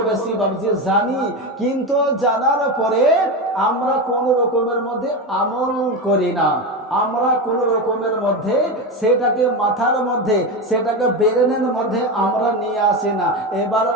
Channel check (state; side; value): normal; both; correlation 0.17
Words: বেশি বাবজি জানি। কিন্তু জানার পরে আমরা কোন রকমের মধ্যে আমল করি না, আমরা কোন রকমের মধ্যে সেটাকে মাথার মধ্যে, সেটাকে ব্রেনের মধ্যে আমরা নিয়ে আসি না। এবার